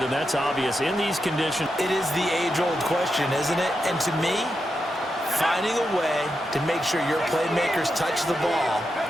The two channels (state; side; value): normal; both; correlation 0.86